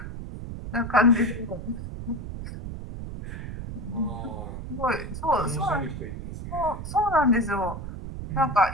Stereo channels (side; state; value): right; noise; rumble, 8 dB below the sound